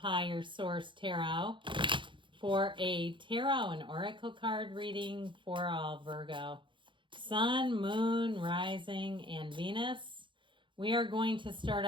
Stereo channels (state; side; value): late; left; 0.24 ms